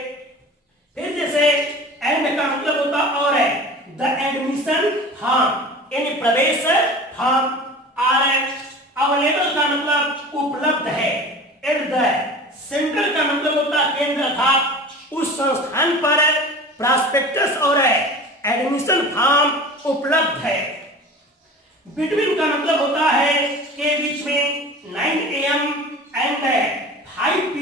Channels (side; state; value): both; normal; correlation 0.38